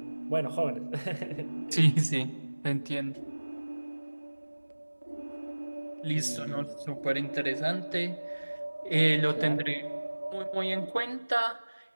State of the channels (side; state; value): both; inverted; correlation -1.00